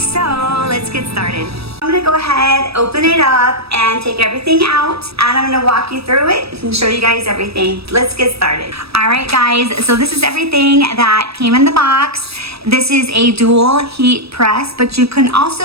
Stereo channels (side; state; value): left; late; 0.78 ms